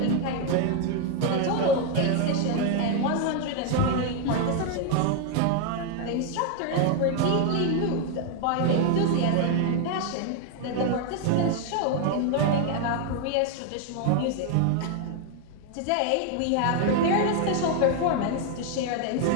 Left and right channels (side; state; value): both; different; correlation 0.01